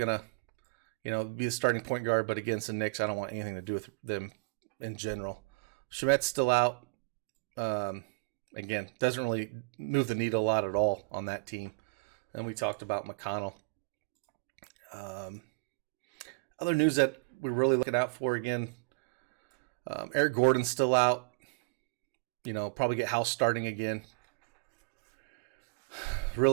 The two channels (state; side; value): quieter; left; 32.6 dB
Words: to, be the starting point guard, but against the Knicks, I don't want anything to do with them in general. Shamet's still out. Again, doesn't really move the needle a lot at all on that team. And we talked about McConnell. Other news that we're really looking out for, again, Eric Gordon's still out. Probably get House starting again.